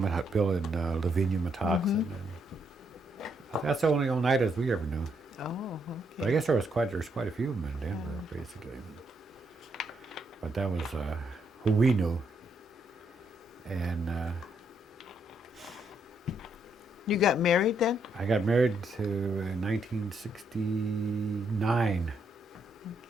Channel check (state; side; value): normal; both; correlation 0.76